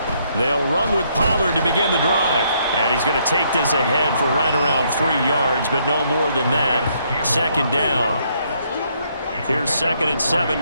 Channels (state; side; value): inverted; both; correlation -0.71